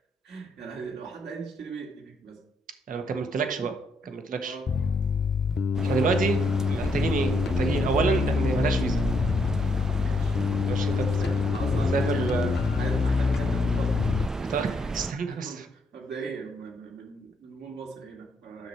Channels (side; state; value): both; normal; correlation 0.74